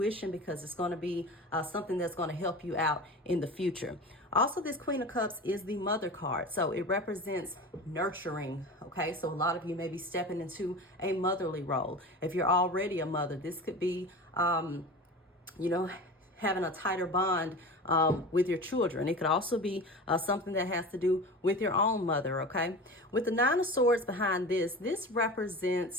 because it's going to be something that's going to help you out in the future. Also, this Queen of Cups is the Mother card. So it represents nurturing, okay? So a lot of you may be stepping into a motherly role. If you're already a mother, this could be, you know, having a tighter bond with your children. It could also be something that has to do with your own mother, okay? With the Nine of Swords behind this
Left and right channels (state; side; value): normal; both; correlation 0.32